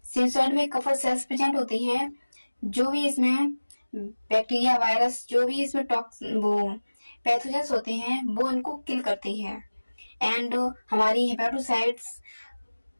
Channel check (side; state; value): both; inverted; correlation -1.00